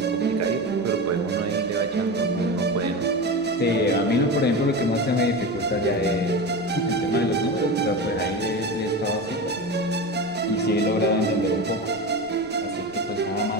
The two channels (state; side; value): noise; right; rumble, 28 dB below the sound